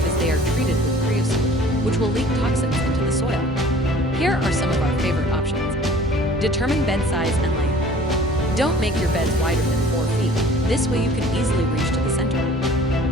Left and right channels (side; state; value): both; normal; correlation 0.50